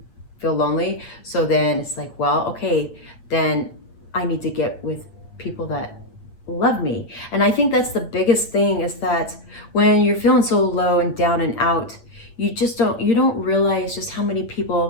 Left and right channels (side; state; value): right; late; 8.7 ms